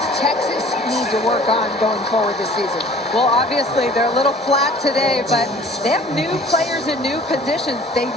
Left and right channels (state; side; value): normal; both; correlation 0.50